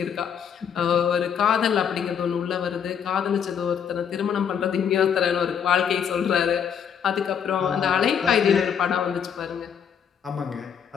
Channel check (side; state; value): right; quieter; 7.8 dB